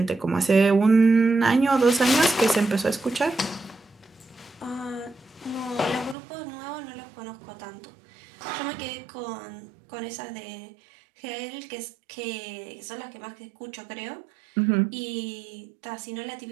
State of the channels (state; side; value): drops out; left; at 6.2 s